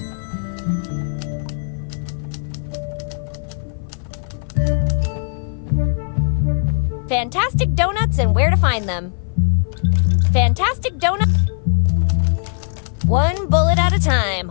Fantastic donuts and where to find them. Fantastic donut. One bullet at a time.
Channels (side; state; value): right; silent; 57 dB below the other